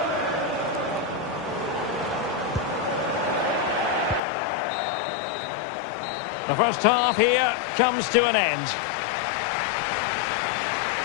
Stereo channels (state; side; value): drops out; right; at 4.2 s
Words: The first half here comes to an end.